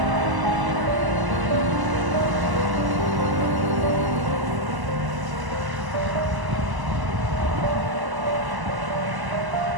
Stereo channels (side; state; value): left; late; 1.0 ms